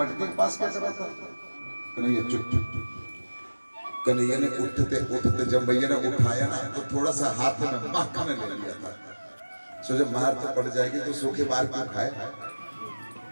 के पास क्या कर रहा था? कन्हैया चुप चुप चुप। कन्हैया ने उठते उठते जब भैया ने उठाया ना तो थोड़ा सा हाथ में मक्खन ले लिया था। सो जब मार तो पड़ जाएगी तो सूखे बार क्यों खाए,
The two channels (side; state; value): both; inverted; correlation -1.00